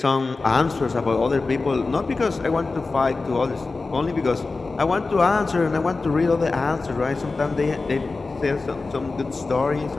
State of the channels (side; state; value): right; quieter; 3.8 dB